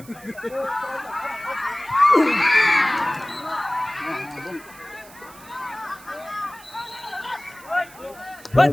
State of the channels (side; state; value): right; noise; hiss, 21 dB below the sound